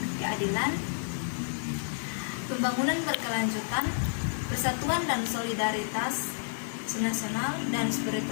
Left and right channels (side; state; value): right; silent; digital silence